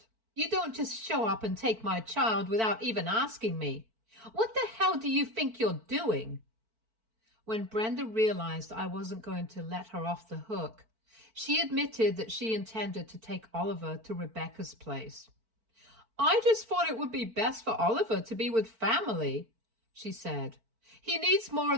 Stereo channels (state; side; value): late; left; 4.5 ms